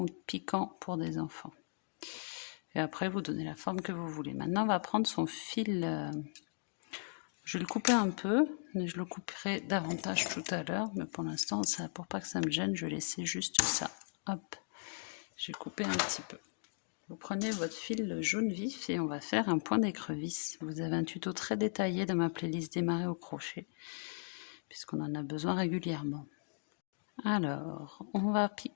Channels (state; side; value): silent; right; digital silence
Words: ou de piquant pour des enfants. Et après, vous donnez la forme que vous voulez. Maintenant, on va prendre son fil. Je vais le couper un peu, mais je le couperai davantage tout à l'heure. Mais pour l'instant, pour pas que ça me gêne, je vais laisser juste ça. Hop, j'ai coupé un petit peu. Vous prenez votre fil jaune vif et on va faire un point d'écrevisse. Vous avez un tuto très détaillé dans ma playlist démarrer au crochet, puisqu'on en a besoin régulièrement. Alors, on va